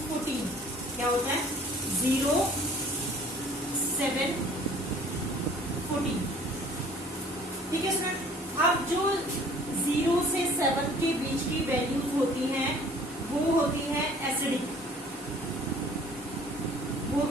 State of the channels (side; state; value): both; normal; correlation 0.53